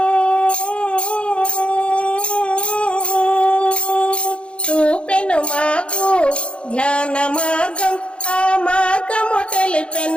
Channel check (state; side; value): late; right; 0.057 ms